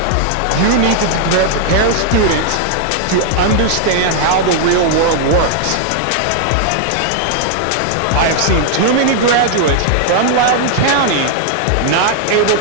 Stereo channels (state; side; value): different; both; correlation 0.00